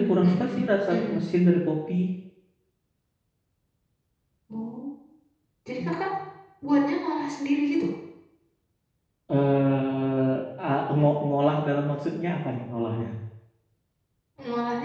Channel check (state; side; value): identical; both; correlation 1.00